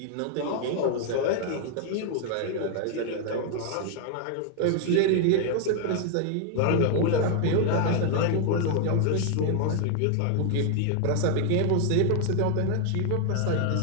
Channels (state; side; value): different; both; correlation 0.00